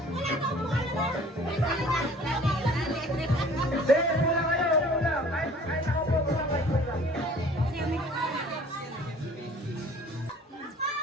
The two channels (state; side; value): normal; both; correlation 0.50